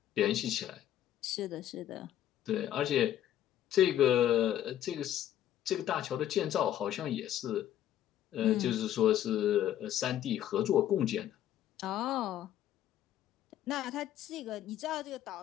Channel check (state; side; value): quieter; right; 11.7 dB